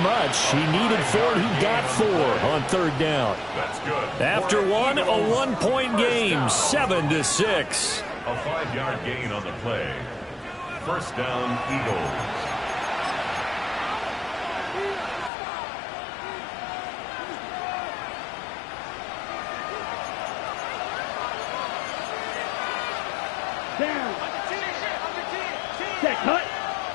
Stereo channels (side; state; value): right; drops out; at 15.3 s